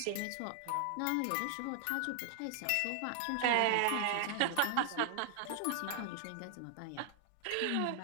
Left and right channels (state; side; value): different; both; correlation 0.00